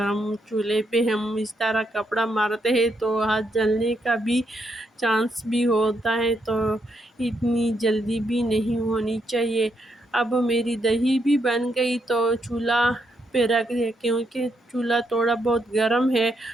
چولہے پہ ہم اس طرح کپڑا مارتے ہیں تو ہاتھ جلنے کا بھی چانس بھی ہوتا ہے، تو اتنی جلدی بھی نہیں ہونی چاہیے۔ اب میری دہی بھی بن گئی تو چولہا پہ رکھ دیا، کیونکہ چولہا تھوڑا بہت گرم ہے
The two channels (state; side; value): normal; both; correlation 0.78